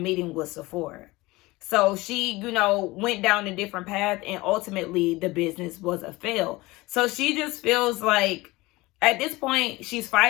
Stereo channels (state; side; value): quieter; right; 21.1 dB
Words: with Sephora. So she, went down a different path and ultimately the business was a fail. So she just feels like at this point, she's